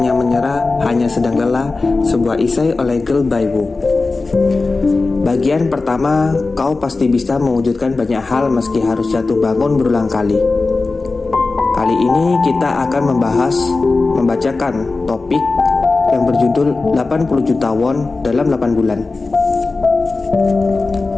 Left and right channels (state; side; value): quieter; right; 3.7 dB